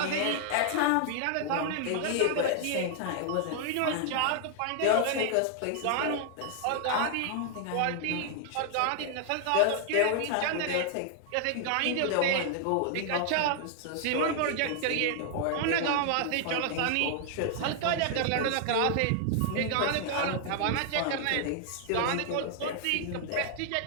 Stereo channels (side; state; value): both; different; correlation 0.00